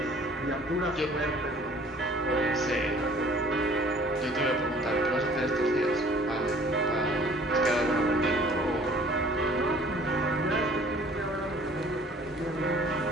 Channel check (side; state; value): both; normal; correlation 0.53